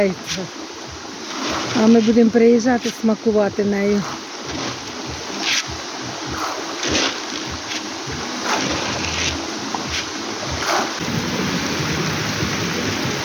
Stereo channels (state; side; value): identical; both; correlation 1.00